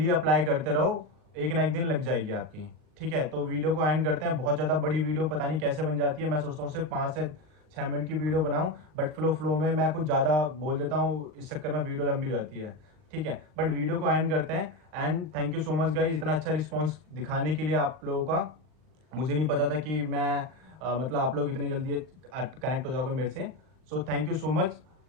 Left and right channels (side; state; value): left; late; 39 ms